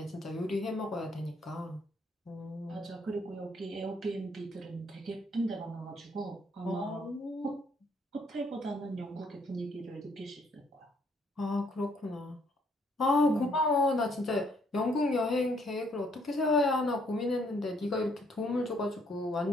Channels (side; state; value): both; normal; correlation 0.67